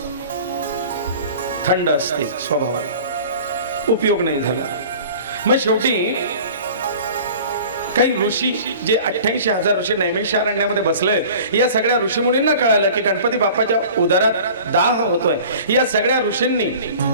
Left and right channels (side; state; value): both; inverted; correlation -0.43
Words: थंड असते स्वभावाला, उपयोग नाही झाला. मग शेवटी काही ऋषी, जे 88,000 ऋषी नैमिषारण्यामध्ये बसले, या सगळ्या ऋषीमुनींना कळालं की गणपती बाप्पाच्या उदरात दाह होतोय. या सगळ्या ऋषींनी